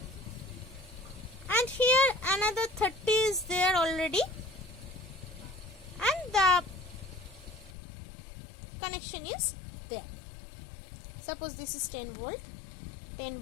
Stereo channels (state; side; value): drops out; right; at 7.8 s